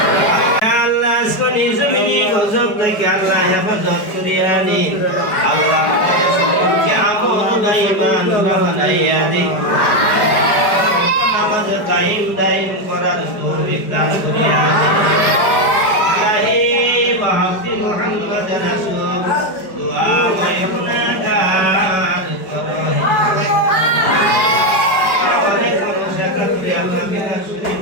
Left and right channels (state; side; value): late; right; 4.9 ms